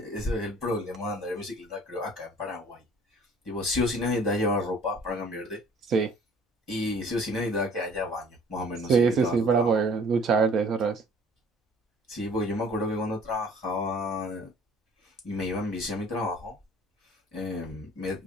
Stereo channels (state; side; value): normal; both; correlation 0.53